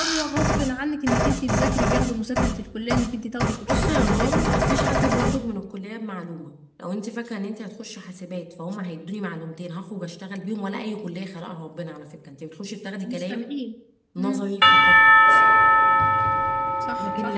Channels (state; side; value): identical; both; correlation 1.00